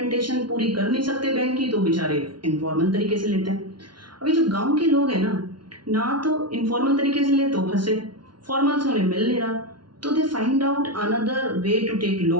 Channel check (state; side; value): late; left; 0.71 ms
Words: पूरी कर नहीं सकते बैंक की, तो बेचारे इनफॉर्मल तरीके से लेते हैं। अभी जो गाँव के लोग हैं ना तो इनफॉर्मल तरीके से ले तो फंसे, फॉर्मल से उन्हें मिल नहीं रहा, तो they find out another way to take